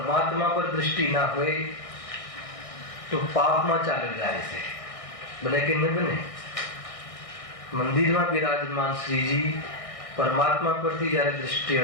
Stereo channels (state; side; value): late; right; 1.6 ms